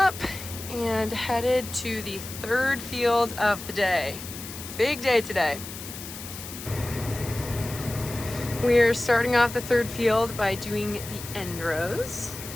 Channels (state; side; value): noise; left; hiss, 11 dB below the sound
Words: and headed to the third field of the day. Big day today. We're starting off the third field by doing the end rows.